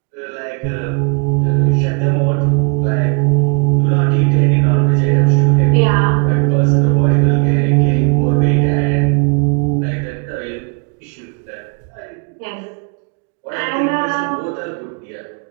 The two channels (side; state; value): left; quieter; 34.9 dB